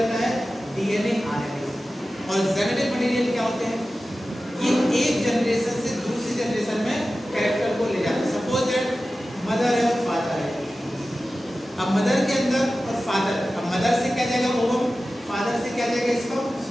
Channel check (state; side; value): normal; both; correlation 0.95